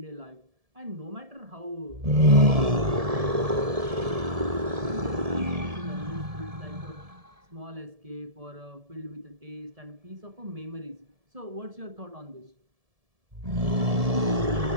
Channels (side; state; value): left; late; 1.7 ms